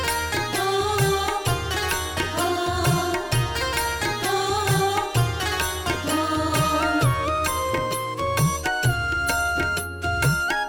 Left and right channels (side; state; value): both; identical; correlation 1.00